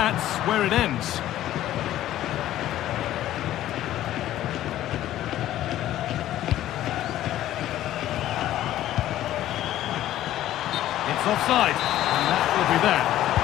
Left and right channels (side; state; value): right; quieter; 13.3 dB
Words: where it ends. It's offside, and that will be that.